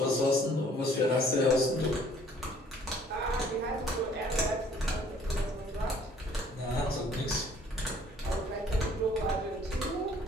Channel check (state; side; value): normal; both; correlation 0.58